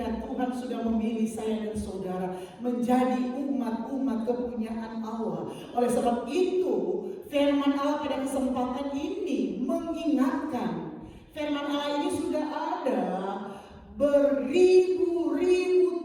Tuhan sudah memilih saya dan saudara menjadi umat-umat kepunyaan Allah. Oleh sebab itu, firman Allah pada kesempatan ini mengingatkan, firman Allah ini sudah ada beribu-ribu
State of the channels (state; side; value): identical; both; correlation 1.00